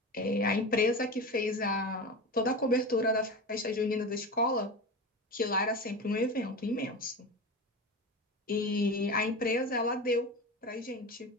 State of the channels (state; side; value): normal; both; correlation 0.26